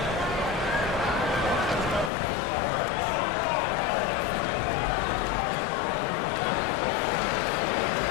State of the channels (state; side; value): drops out; right; at 2.1 s